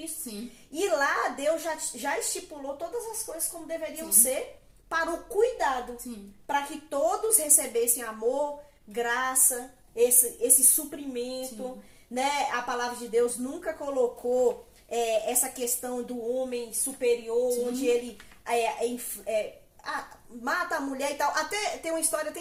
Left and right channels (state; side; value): identical; both; correlation 1.00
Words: Sim. E lá Deus já estipulou todas as coisas como deveriam ser para o cuidado, para que todos recebessem amor, graça, esse suprimento, né? A palavra de Deus nunca colocou essa questão do homem superior, onde ele mata a mulher e tal. Até tem uma história até